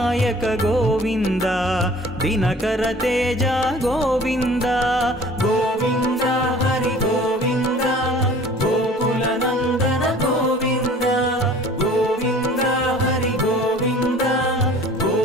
गोविन्द दिनकर तेज गोविन्द गोविन्द हरि गोविन्द गोकुलनन्दन गोविन्द गोविन्द हरि गोविन्द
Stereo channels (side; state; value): both; normal; correlation 0.48